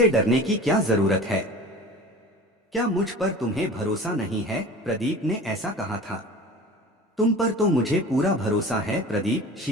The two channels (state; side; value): normal; both; correlation 0.38